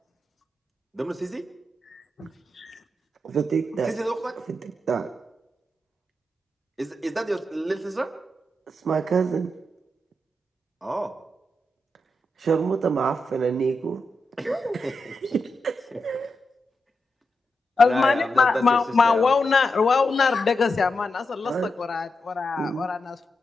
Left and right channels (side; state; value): both; normal; correlation 0.86